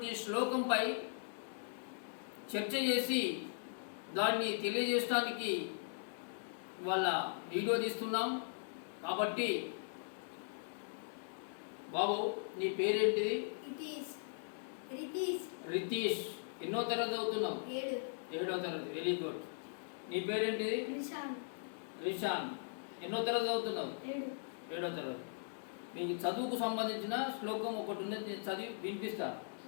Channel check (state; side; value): silent; right; digital silence